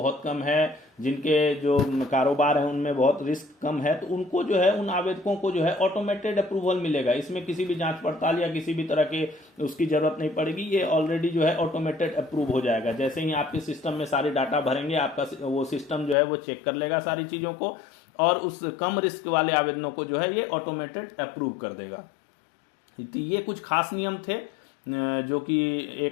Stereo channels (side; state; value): right; drops out; at 16.2 s